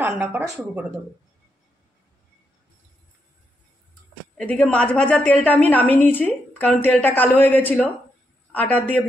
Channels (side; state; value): both; normal; correlation 0.81